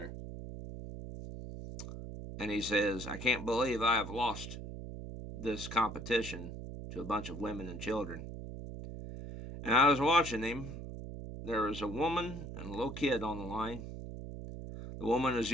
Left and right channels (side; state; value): right; noise; hum, 9 dB below the sound